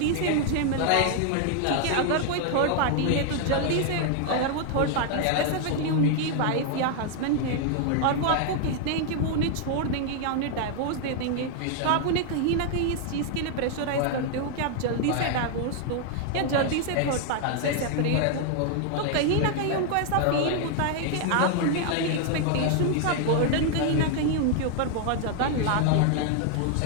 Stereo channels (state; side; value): different; both; correlation 0.00